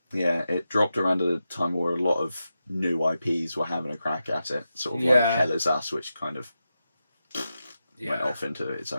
Yeah, it dropped around at a time where a lot of new IPs were having a crack at it. Sort of Yeah. like Hell Is Us, which kind of went off into its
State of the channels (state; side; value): inverted; both; correlation -0.90